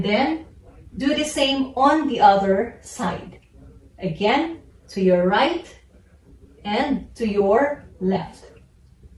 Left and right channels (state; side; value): identical; both; correlation 1.00